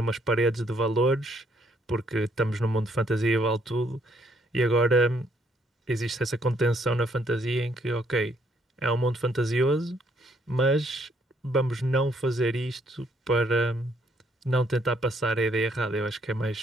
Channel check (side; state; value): both; normal; correlation 0.69